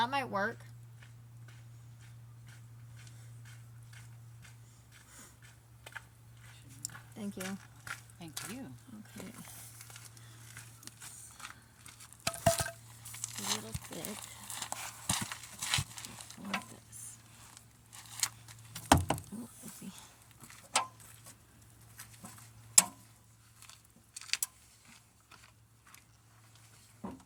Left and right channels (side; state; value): both; identical; correlation 1.00